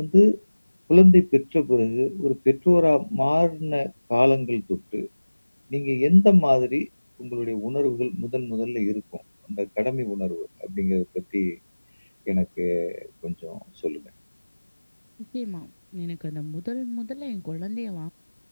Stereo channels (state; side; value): inverted; both; correlation -1.00